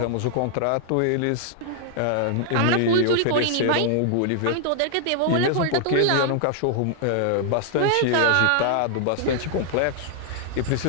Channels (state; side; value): different; both; correlation -0.01